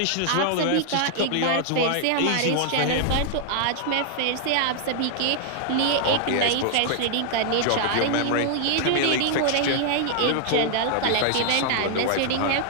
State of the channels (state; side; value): different; both; correlation 0.00